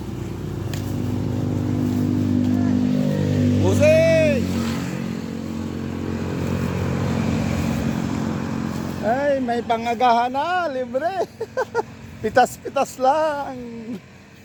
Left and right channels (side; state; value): both; identical; correlation 1.00